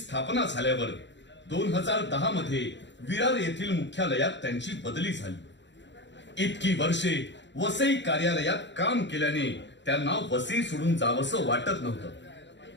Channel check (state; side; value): late; right; 0.52 ms